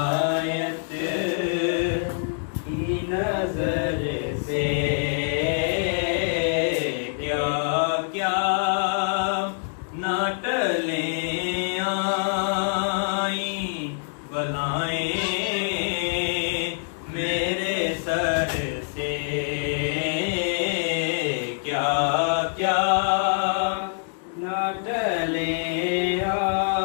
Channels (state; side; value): silent; right; 62 dB below the other